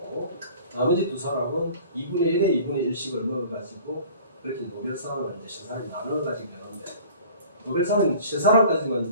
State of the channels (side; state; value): both; inverted; correlation -0.46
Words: 나머지 두 사람은 2분의 1에 2분의 1씩을 먹어가지고 그렇게 노벨상을 이제 세 사람이 나눠가지고 되는데, 노벨상은 세